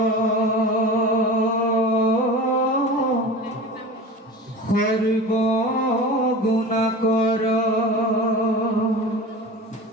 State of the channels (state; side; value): normal; both; correlation 0.33